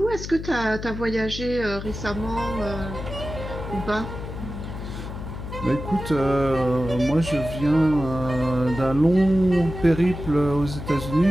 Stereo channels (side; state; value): left; noise; hum, 8 dB below the sound